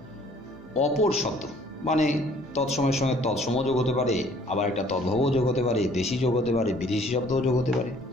অপর শব্দ, মানে তৎসমের সঙ্গে তৎসম যোগ হতে পারে, আবার একটা তদ্ভব যোগ হতে পারে, দেশি যোগ হতে পারে, বিদেশি শব্দও যোগ হতে পারে,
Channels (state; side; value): normal; both; correlation 0.57